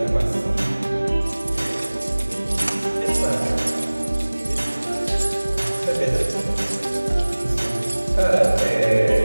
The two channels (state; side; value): inverted; both; correlation -1.00